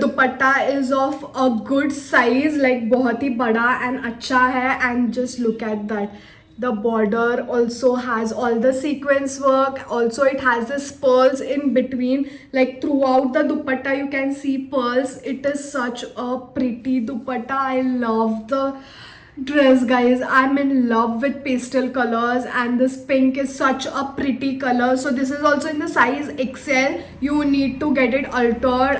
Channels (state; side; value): identical; both; correlation 1.00